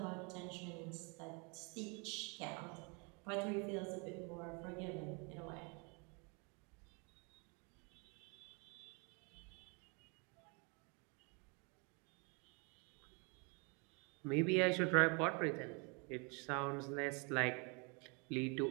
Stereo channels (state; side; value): quieter; left; 32.8 dB